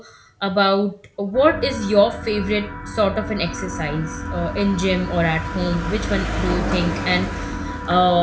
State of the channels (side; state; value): both; identical; correlation 1.00